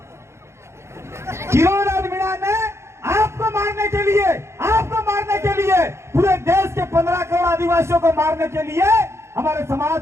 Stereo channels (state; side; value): late; left; 0.13 ms